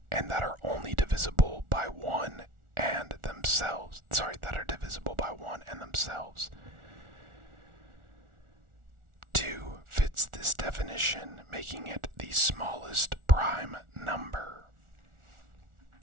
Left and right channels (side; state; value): left; late; 1.4 ms